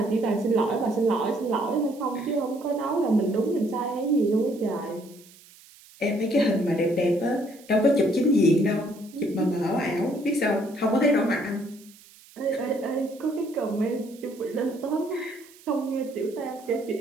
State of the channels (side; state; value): right; noise; hiss, 24 dB below the sound